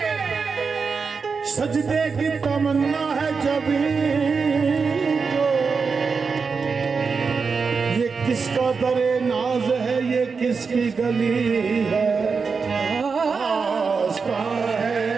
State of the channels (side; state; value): left; quieter; 5.1 dB